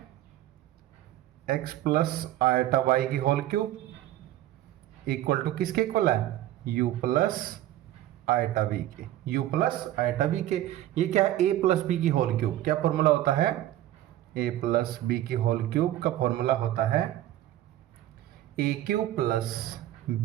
x प्लस आयटा वाई की होल क्यूब इक्वल टू किसके इक्वल है? u प्लस आयटा बी के। u प्लस आयटा बी के ये क्या है? a प्लस बी की होल क्यूब। क्या फॉर्मूला होता है? a प्लस बी की होल क्यूब का फॉर्मूला होता है a cube plus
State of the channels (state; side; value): quieter; left; 13.7 dB